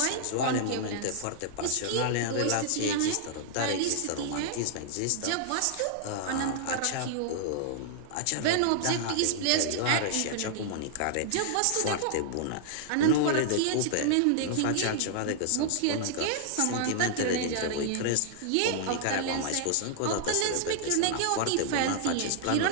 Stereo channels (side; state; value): both; different; correlation -0.01